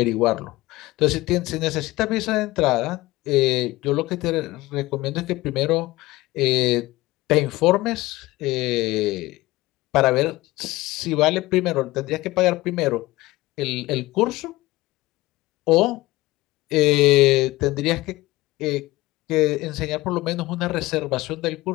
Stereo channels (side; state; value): right; quieter; 19.2 dB